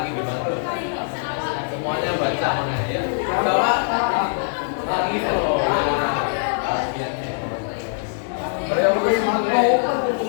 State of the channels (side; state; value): right; silent; 57 dB below the other